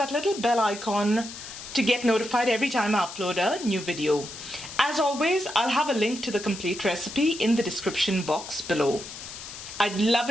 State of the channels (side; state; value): left; noise; hiss, 12 dB below the sound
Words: little bell icon to get notified every time I upload a new video. As always, I'll have a link to the complete recipe in the description box below. I'd love